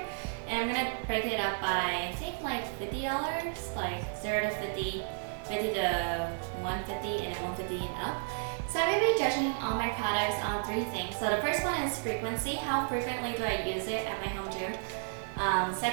And I'm going to break it up by, I think like $50, like 0 to 50, 50 to 150, and then 150 and up. So I'm going to be judging all my products on 3 things. So the first one is frequency. How frequently do I use it at my home gym?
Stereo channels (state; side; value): silent; left; 56 dB below the other